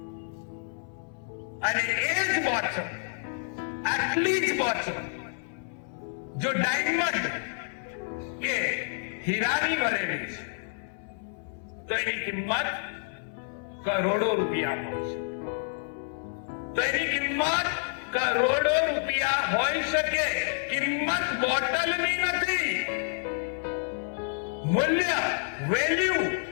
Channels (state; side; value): silent; right; 58 dB below the other